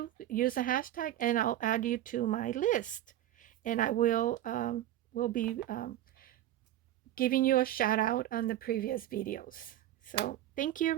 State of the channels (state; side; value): quieter; left; 13.0 dB